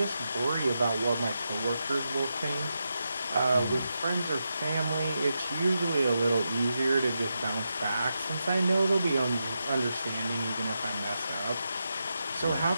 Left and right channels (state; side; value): inverted; both; correlation -0.87